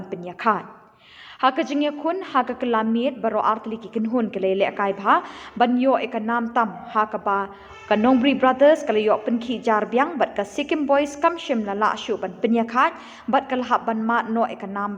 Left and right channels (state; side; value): identical; both; correlation 1.00